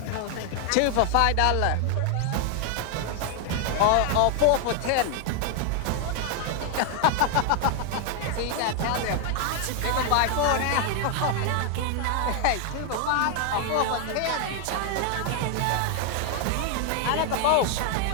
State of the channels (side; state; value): both; different; correlation 0.00